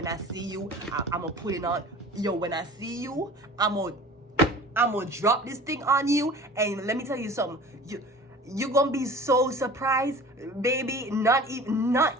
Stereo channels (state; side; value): normal; both; correlation 0.42